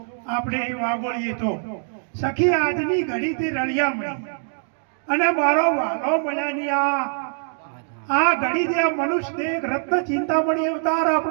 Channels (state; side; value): silent; left; 63 dB below the other